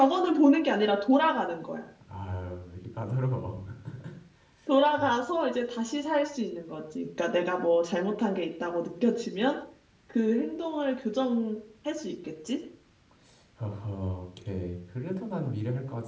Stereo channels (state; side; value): identical; both; correlation 1.00